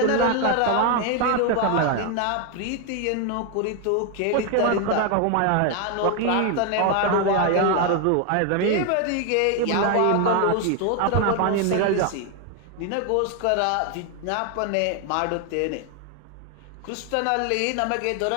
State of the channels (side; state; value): both; different; correlation 0.01